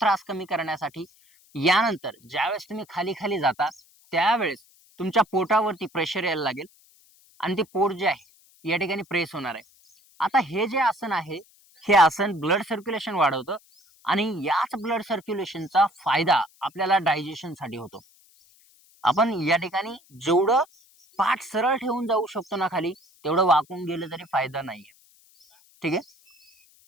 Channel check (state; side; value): noise; left; hiss, 30 dB below the sound